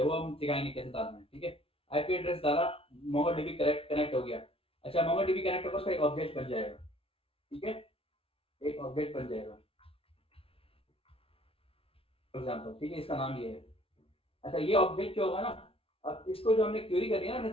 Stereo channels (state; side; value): late; right; 0.27 ms